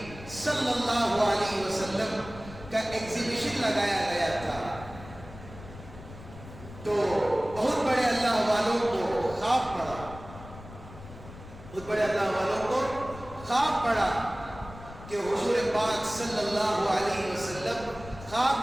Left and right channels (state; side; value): noise; left; rumble, 15 dB below the sound